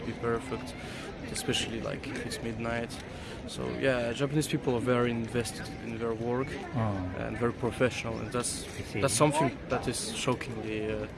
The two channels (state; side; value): identical; both; correlation 1.00